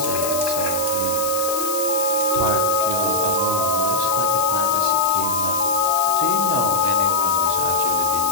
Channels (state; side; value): noise; left; hiss, 5 dB below the sound